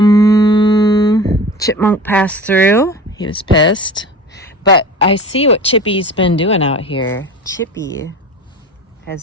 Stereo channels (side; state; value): both; normal; correlation 0.35